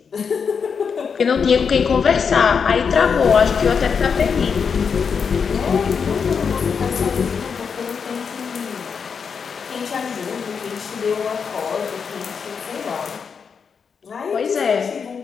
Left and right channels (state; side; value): quieter; right; 6.2 dB